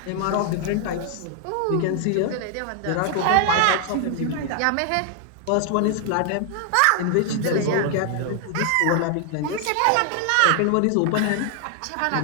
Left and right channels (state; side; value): different; both; correlation 0.00